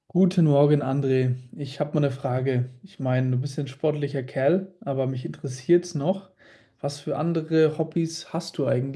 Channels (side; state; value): both; identical; correlation 1.00